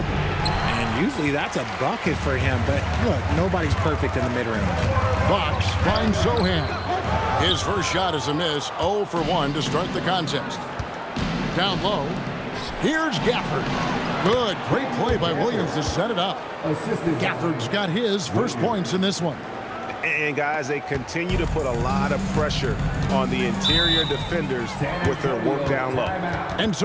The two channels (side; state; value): both; identical; correlation 1.00